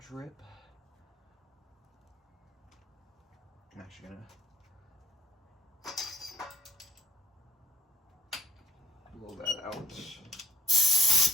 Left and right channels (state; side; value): normal; both; correlation 0.65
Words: I'm actually gonna blow that out.